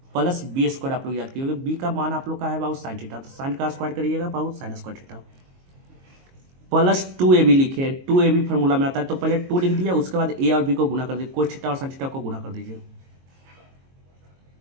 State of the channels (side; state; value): left; late; 22 ms